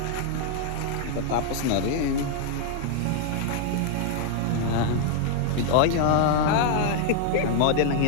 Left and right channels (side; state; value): both; different; correlation 0.00